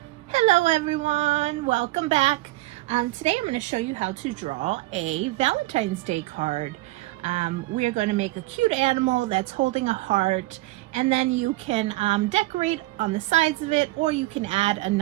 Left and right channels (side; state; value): left; quieter; 19.7 dB